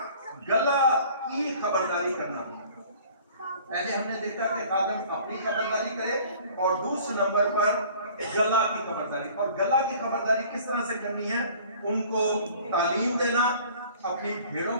गला की खबरदारी करना। पहले हमने देखा कि खादम अपनी खबरदारी करे और दूसरे नंबर पर गला की खबरदारी। और गला की खबरदारी किस तरह से करनी है? उनको तालीम देना, अपनी भेड़ों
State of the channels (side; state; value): both; inverted; correlation -0.50